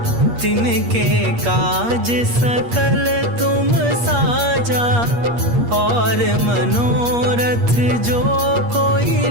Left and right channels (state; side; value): late; left; 8.5 ms